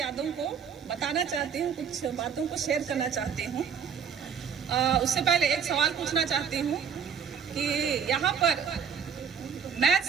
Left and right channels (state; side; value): quieter; left; 7.1 dB